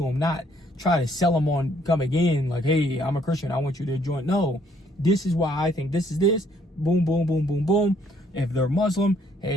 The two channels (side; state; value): both; normal; correlation 0.66